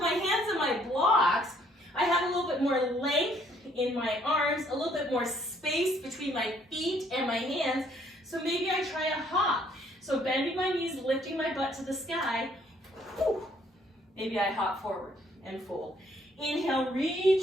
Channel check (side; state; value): both; normal; correlation 0.65